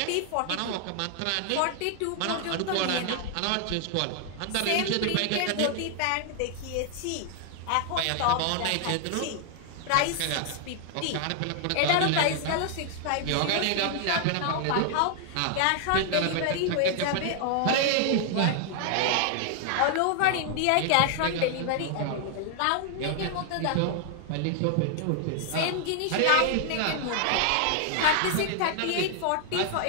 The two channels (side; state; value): both; different; correlation 0.00